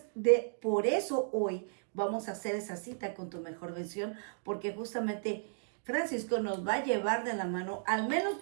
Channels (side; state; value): left; silent; digital silence